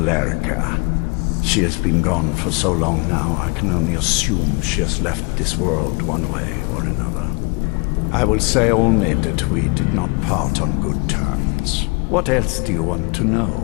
She has been gone for so long now, I can only assume she has left this world one way or another. I will say only that we did not part on good terms. What else do you want to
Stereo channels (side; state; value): right; quieter; 30.4 dB